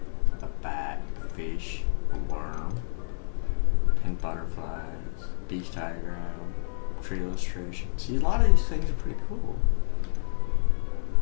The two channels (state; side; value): silent; right; 59 dB below the other